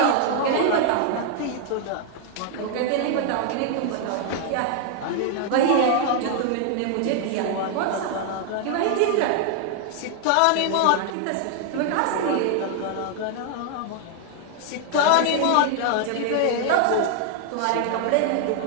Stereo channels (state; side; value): different; both; correlation 0.00